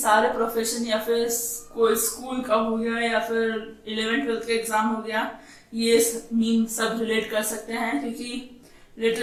प्रोफेशन या फिर कोई स्कूल का हो गया या फिर 11th-12th का एग्जाम हो गया, ये मीम सब रिलेट कर सकते हैं. क्योंकि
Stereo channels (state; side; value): identical; both; correlation 1.00